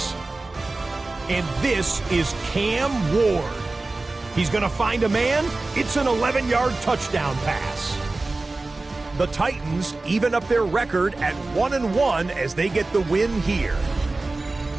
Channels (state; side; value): quieter; left; 3.2 dB